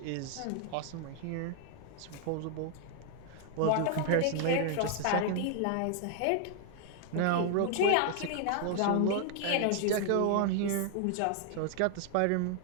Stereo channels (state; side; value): different; both; correlation 0.00